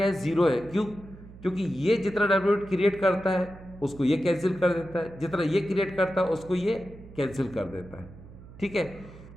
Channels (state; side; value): noise; right; hum, 18 dB below the sound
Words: है, जीरो है। क्यों? क्योंकि ये जितना डायपोल मोमेंट क्रिएट करता है उसको ये कैंसिल कर देता है, जितना ये क्रिएट करता है उसको ये कैंसिल कर देता है, ठीक है।